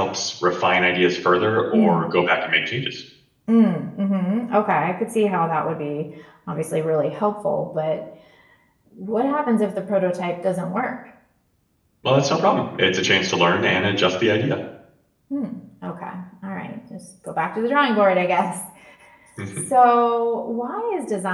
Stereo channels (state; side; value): identical; both; correlation 1.00